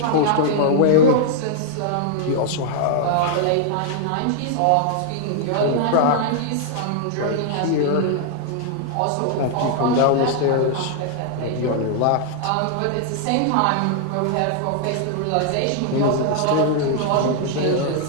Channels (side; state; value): both; different; correlation -0.01